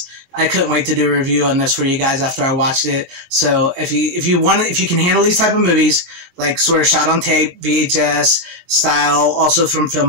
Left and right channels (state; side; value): late; left; 22 ms